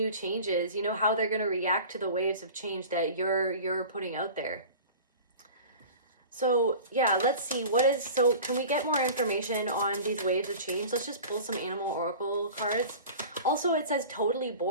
changes, you know, how they're going to react to the waves of change that you're putting out there. So yeah, let's see so can we get more information on these waves of change? Let's just pull some animal oracle cards. Also, it says totally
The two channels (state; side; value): inverted; both; correlation -0.38